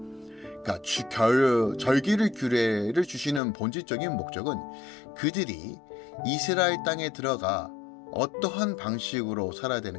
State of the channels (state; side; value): drops out; right; at 3.4 s